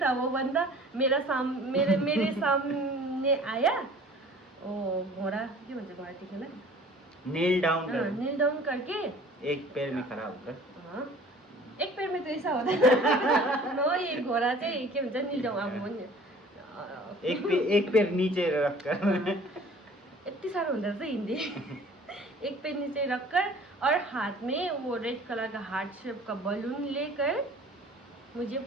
था वो बंदा मेरे सामने आया। ओ घोड़ा क्या बोलते घोड़ा ठीक है ना नील डाउन करके एक पैर में खड़ा होकर। हाँ एक पैर में तो ऐसा होता है नो ये घोड़ा चाहिँ के भन्छ नील डाउन अब एक पैर नीचे रखकर यति साह्रो हुँदो रहेछ हिन्दी एक पैर नीचे रखकर और हाथ में वो रेड कलर का हार्ट शेप का बलून लेकर मुझे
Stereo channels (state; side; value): normal; both; correlation 0.48